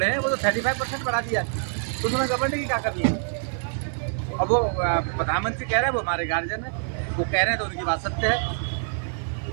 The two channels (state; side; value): silent; left; digital silence